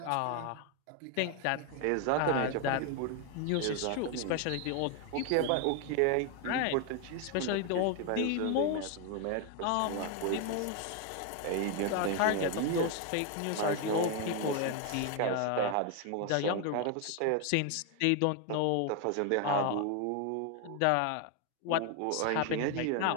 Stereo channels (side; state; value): both; different; correlation 0.01